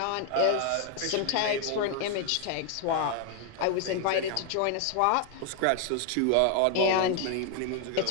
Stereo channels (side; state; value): both; different; correlation 0.00